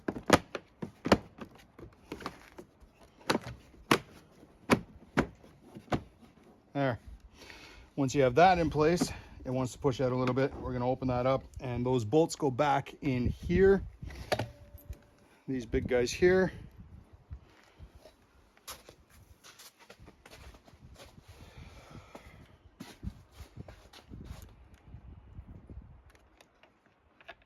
There. Once you have that in place, it wants to push out a little bit. We're going to open that up, and those bolts go back in here. These big guys here.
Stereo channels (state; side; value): identical; both; correlation 1.00